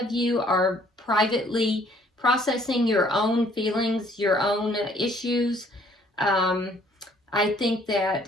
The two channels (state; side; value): normal; both; correlation 0.61